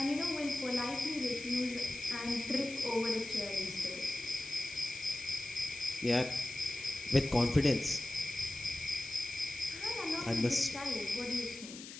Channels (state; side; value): noise; left; hiss, 12 dB below the sound